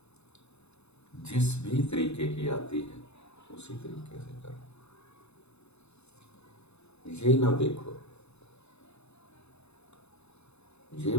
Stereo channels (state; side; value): late; right; 0.80 ms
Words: جس بھی طریقے کی آتی ہے اسی طریقے سے کرو۔ یہ نہ دیکھو